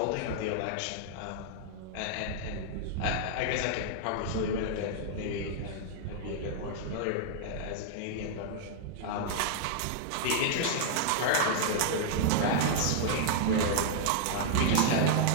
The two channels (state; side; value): different; both; correlation -0.01